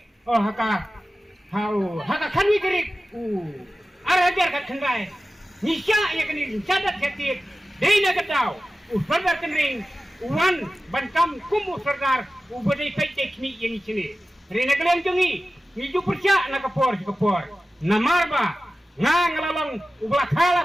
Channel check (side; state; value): both; normal; correlation 0.95